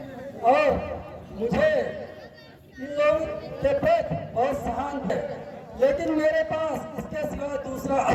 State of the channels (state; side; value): identical; both; correlation 1.00